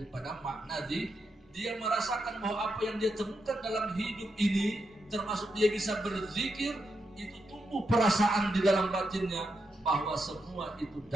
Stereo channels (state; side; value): normal; both; correlation 0.83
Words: makna dia merasakan bahwa apa yang dia temukan dalam hidup ini, termasuk dia bisa berzikir, itu tumbuh perasaan di dalam batinnya bahwa semua itu